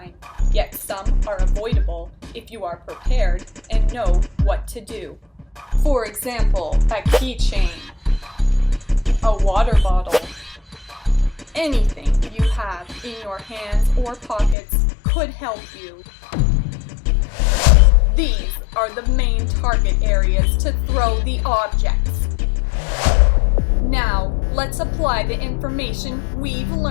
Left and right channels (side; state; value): right; drops out; at 14.6 s